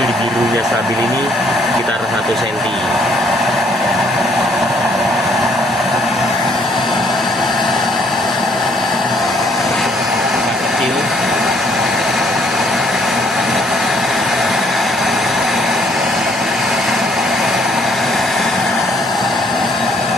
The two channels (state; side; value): normal; both; correlation 0.65